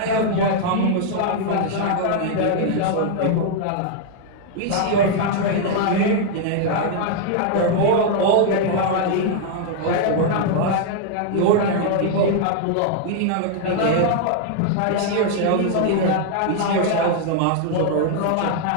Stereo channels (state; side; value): different; both; correlation 0.00